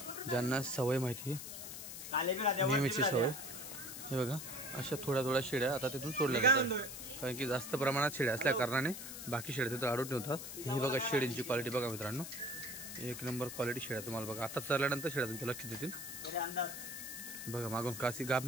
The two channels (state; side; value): noise; left; hiss, 9 dB below the sound